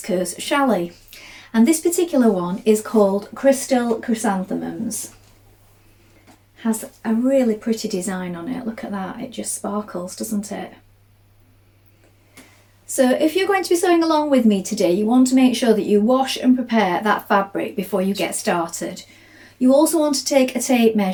challis. And this particular one is called Crystal Chrysanthemums. Has a really pretty design on it. Look at that, it just sparkles, doesn't it? So if you're going to be sewing along with me today, you want to make sure that you wash and prepare that fabric before you get started. You also want to take a tape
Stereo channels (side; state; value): both; identical; correlation 1.00